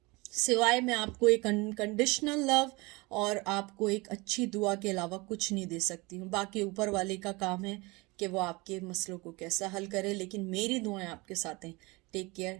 सिवाय मैं आपको एक अनकंडीशनल लव और आपको एक अच्छी दुआ के अलावा कुछ नहीं दे सकती हूँ। बाकी ऊपर वाले का काम है कि वो आपके मसलों को कैसा हल करे, लेकिन मेरी दुआएं आपके साथ हैं। Take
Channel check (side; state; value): left; quieter; 24.6 dB